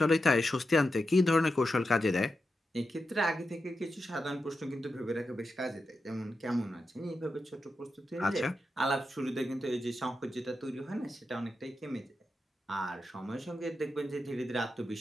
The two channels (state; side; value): normal; both; correlation 0.88